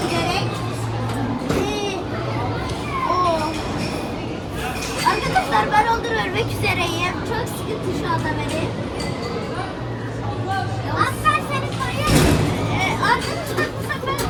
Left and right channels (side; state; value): both; identical; correlation 1.00